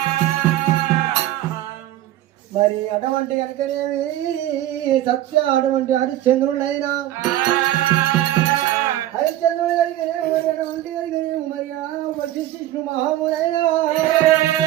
మరి అటువంటి కనుకనేమి సత్య అటువంటి హరిశ్చంద్రుడైనా హరిశ్చంద్రుడు కలిగినేమి మరి అటువంటి కలిగినేమి మరి వశిష్ఠు మహామునైనా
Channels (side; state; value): left; quieter; 13.8 dB